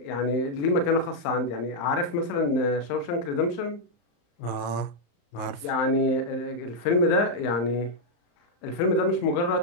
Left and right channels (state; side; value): late; right; 34 ms